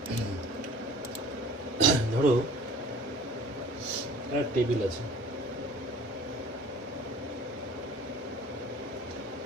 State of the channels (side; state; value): both; normal; correlation 0.47